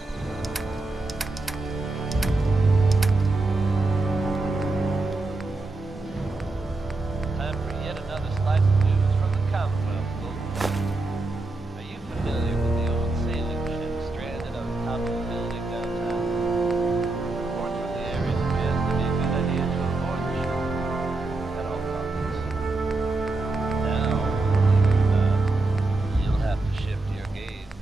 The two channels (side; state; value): left; quieter; 3.1 dB